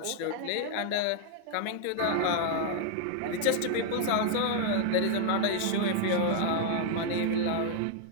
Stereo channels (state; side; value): different; both; correlation 0.00